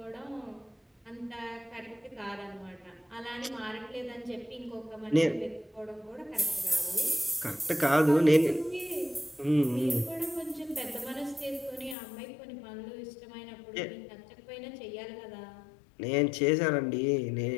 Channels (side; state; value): right; drops out; at 12.0 s